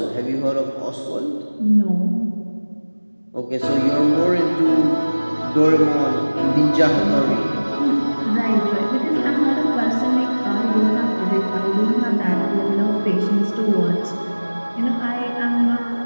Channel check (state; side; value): inverted; both; correlation -1.00